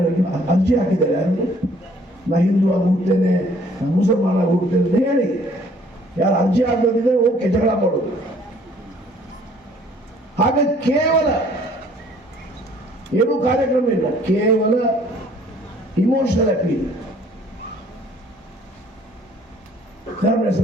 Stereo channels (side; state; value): both; normal; correlation 0.58